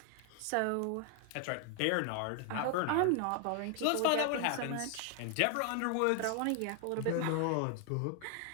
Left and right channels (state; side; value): different; both; correlation 0.00